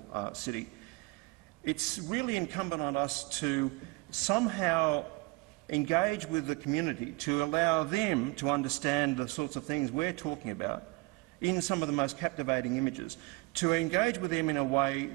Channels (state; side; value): quieter; left; 25.4 dB